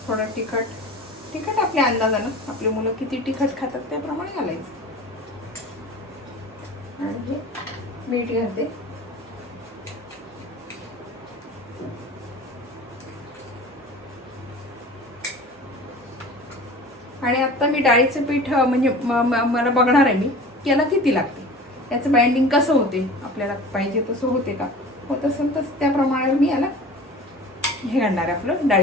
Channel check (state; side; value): normal; both; correlation 0.39